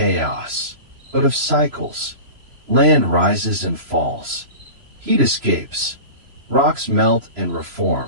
but of cycles. Land rises and falls. Heat escapes. Rocks melt and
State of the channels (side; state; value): left; late; 3.0 ms